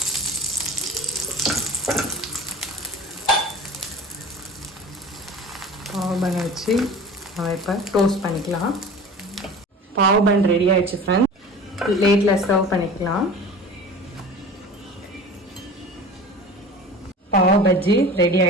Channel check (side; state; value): both; normal; correlation 0.38